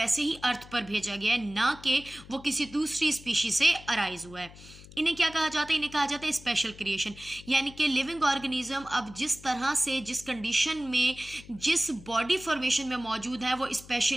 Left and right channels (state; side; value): noise; left; hum, 19 dB below the sound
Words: ही अर्थ पर भेजा गया है, ना कि वो किसी दूसरी स्पीशीज से अराइज हुआ है। इन्हें क्या कहा जाता है? इन्हें कहा जाता है स्पेशल क्रिएशन। यानी कि लिविंग ऑर्गेनिज्म अब जिस तरह से, जिस कंडीशन में, जिस बॉडी फॉर्मेशन में मौजूद है, वो